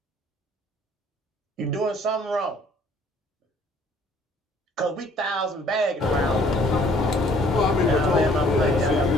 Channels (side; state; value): both; normal; correlation 0.59